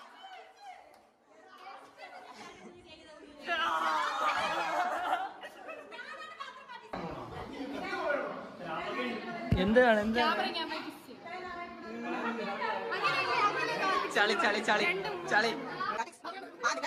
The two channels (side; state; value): both; identical; correlation 1.00